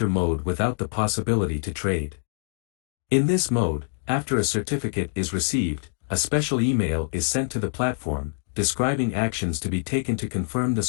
mode without the possibility to trade. In this mode, after a certificate is received, a special email is sent to the platform, describing actions to be taken to confirm the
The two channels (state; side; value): silent; right; digital silence